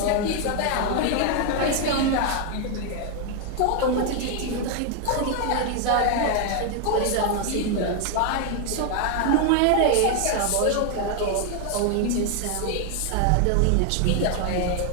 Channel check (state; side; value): different; both; correlation 0.01